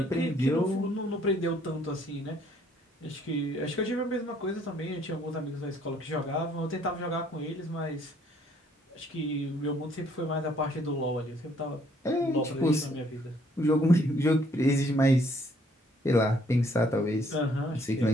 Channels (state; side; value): normal; both; correlation 0.64